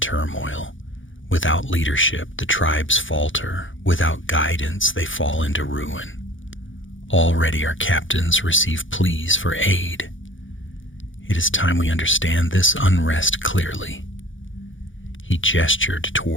Without leadership, the tribes falter. Without guidance, they fall into ruin. Already our captains receive pleas for aid. It is time we understand this unrest clearly. He gestured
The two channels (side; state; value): right; late; 0.56 ms